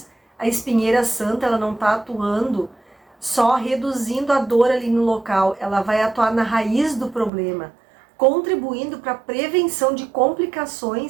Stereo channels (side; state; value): left; drops out; at 7.3 s